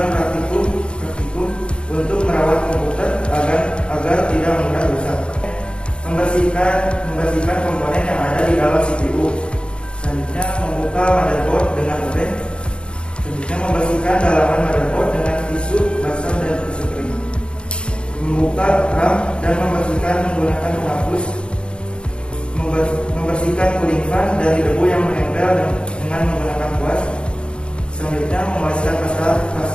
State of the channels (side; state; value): right; late; 0.055 ms